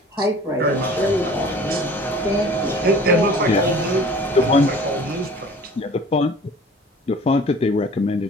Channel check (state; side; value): normal; both; correlation 0.46